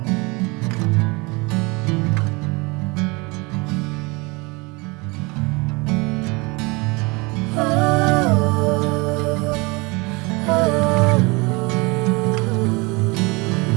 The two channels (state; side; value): quieter; left; 26.5 dB